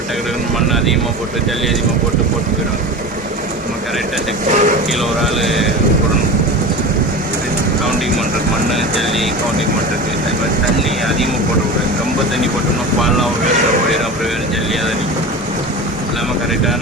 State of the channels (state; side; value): normal; both; correlation 0.30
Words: டக்கு மண் அதிகமாக போட்டு ஜல்லி அதிகமாக போட்டு போயிடுவாங்க. நம்ம கரெக்டாக செக் பண்ணணும். கீழே ஒரு ஆள் போடணும், கவுண்டிங் பண்ணுறது, மண் ஜல்லி கவுண்டிங் பண்ணுறது. அது மாதிரி தண்ணி அதிகமாக போடக்கூடாது. ரொம்ப தண்ணி போட்டோம்னா பால்லாம் வேஸ்ட்டாக போயிடும். அப்புறம் வேறு ஜல்லியாக தான் நிற்கும். இல்லாமல்